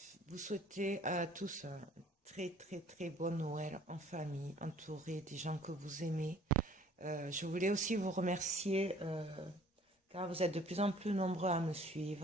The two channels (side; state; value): both; normal; correlation 0.54